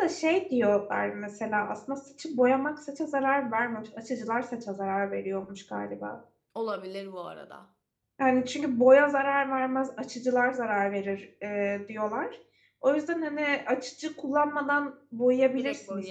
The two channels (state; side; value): identical; both; correlation 1.00